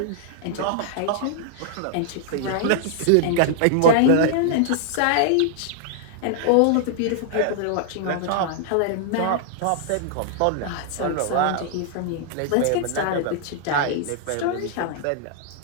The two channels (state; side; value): different; both; correlation -0.01